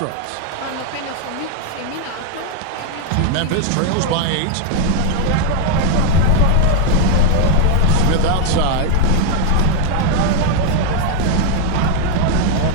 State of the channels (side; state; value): both; different; correlation 0.01